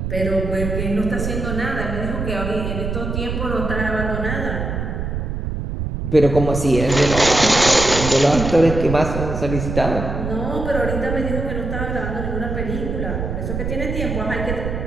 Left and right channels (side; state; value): right; noise; rumble, 3 dB below the sound